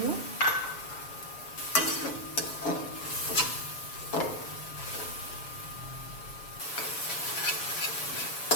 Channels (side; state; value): right; late; 7.1 ms